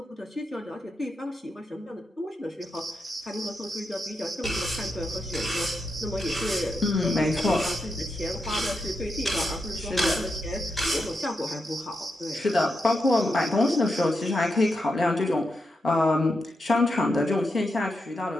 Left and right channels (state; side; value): normal; both; correlation 0.85